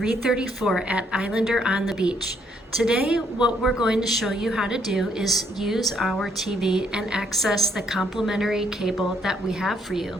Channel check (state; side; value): normal; both; correlation 0.71